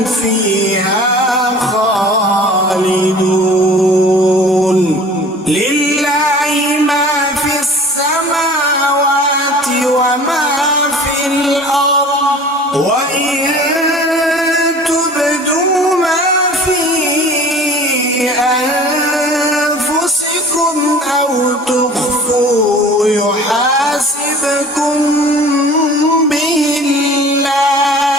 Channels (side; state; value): both; normal; correlation 0.45